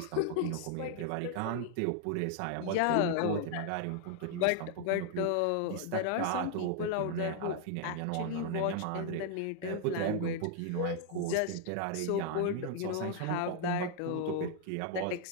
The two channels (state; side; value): different; both; correlation 0.00